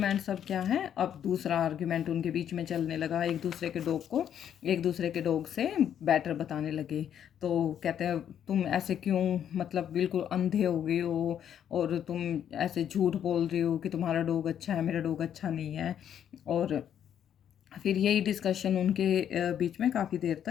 सब क्या है, अब दूसरा आर्ग्यूमेंट उनके बीच में चलने लगा, एक दूसरे के डॉग को एक दूसरे के डॉग से बेटर बताने लगे। तो कहते हैं तुम ऐसे क्यों, मतलब बिल्कुल अंधे हो गए हो, और तुम ऐसे झूठ बोल रही हो कि तुम्हारा डॉग अच्छा है, मेरा डॉग अच्छा नहीं है। और फिर यही डिस्कशन उनके बीच में काफ़ी देर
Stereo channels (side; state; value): right; quieter; 9.5 dB